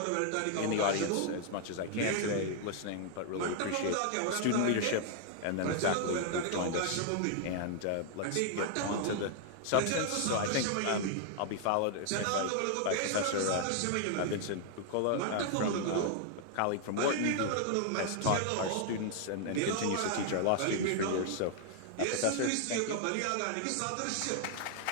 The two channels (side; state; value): both; different; correlation 0.00